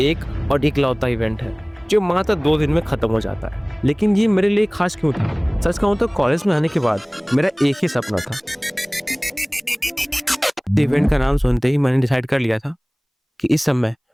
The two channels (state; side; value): identical; both; correlation 1.00